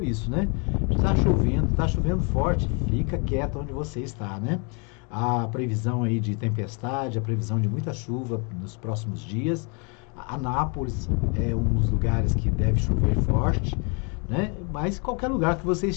isso, né? Está chovendo forte, fica quieto onde você está, né? A previsão aí de tempestade, a previsão de muita chuva nos próximos dias. Anápolis é um dos lugares que deve chover forte, né? Mas qualquer lugar que você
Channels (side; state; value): right; quieter; 34.7 dB